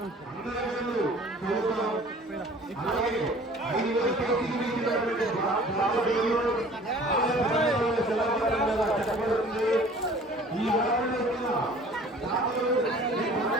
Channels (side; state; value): both; normal; correlation 0.49